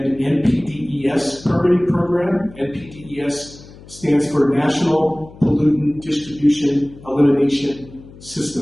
NPDES permitting program. NPDES stands for National Pollutant Distribution Elimination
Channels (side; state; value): left; noise; hum, 20 dB below the sound